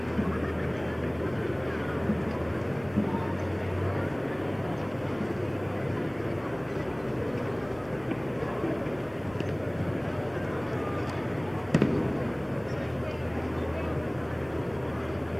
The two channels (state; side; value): noise; left; rumble, 21 dB below the sound